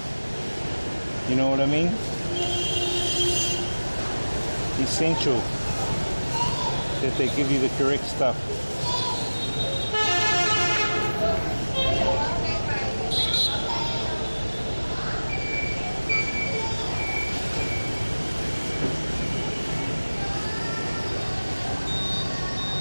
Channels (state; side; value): inverted; both; correlation -1.00